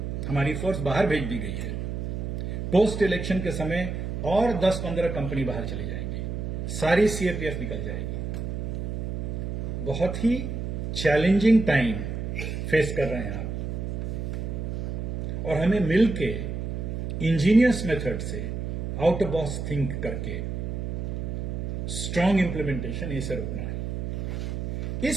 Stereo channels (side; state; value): right; noise; hum, 3 dB below the sound